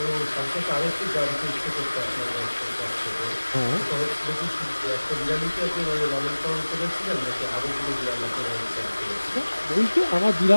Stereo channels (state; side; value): inverted; both; correlation -1.00